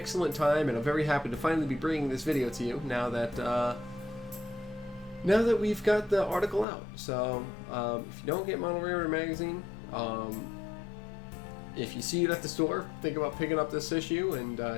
time, and I'm very happy to finally be bringing this video to you now that we've got the article out. So if you don't get Model Railroader magazine, if you see it at the store, think about picking up this issue and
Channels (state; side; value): drops out; right; at 6.7 s